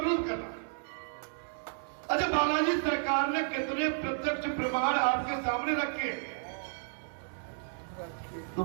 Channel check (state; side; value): silent; left; digital silence